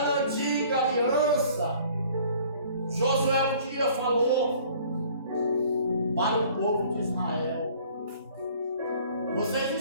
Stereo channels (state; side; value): inverted; both; correlation -0.53